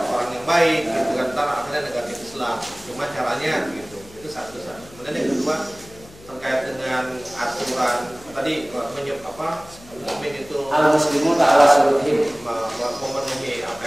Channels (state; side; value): noise; left; hum, 22 dB below the sound